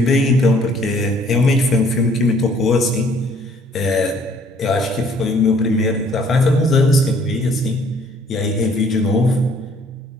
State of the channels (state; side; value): normal; both; correlation 0.60